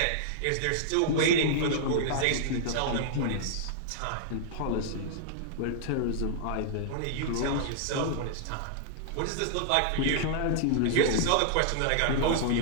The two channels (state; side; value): different; both; correlation -0.02